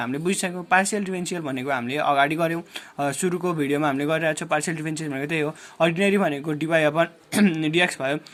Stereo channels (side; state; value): both; identical; correlation 1.00